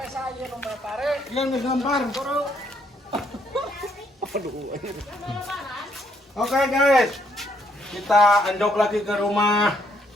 Yang digampar. Oke guys, kita andok lagi ke rumah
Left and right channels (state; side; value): normal; both; correlation 0.71